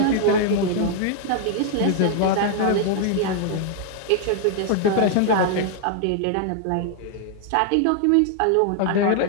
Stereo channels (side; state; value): both; different; correlation 0.00